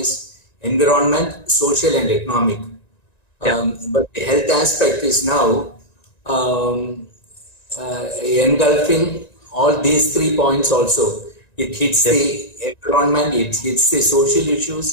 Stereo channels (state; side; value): late; right; 1.9 ms